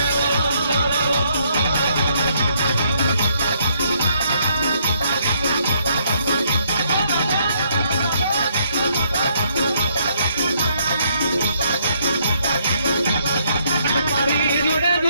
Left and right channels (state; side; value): inverted; both; correlation -0.70